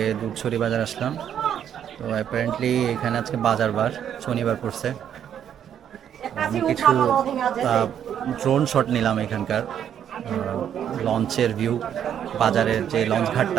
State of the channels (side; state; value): left; quieter; 9.3 dB